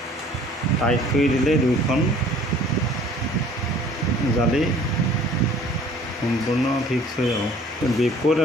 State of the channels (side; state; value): both; normal; correlation 0.53